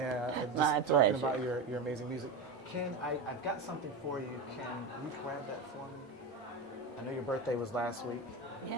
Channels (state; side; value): quieter; left; 3.7 dB